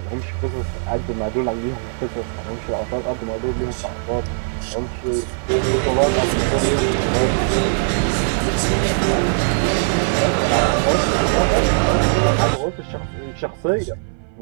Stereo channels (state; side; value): silent; left; 61 dB below the other